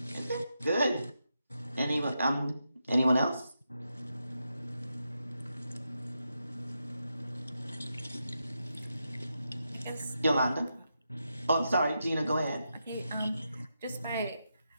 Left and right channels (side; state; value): both; inverted; correlation -0.86